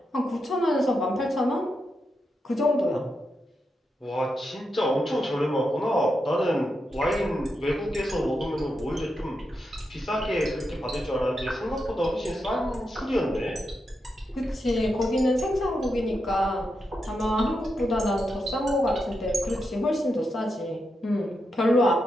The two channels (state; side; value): normal; both; correlation 0.86